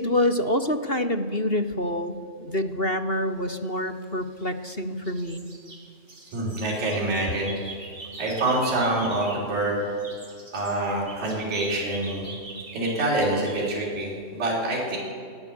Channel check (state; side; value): late; right; 2.8 ms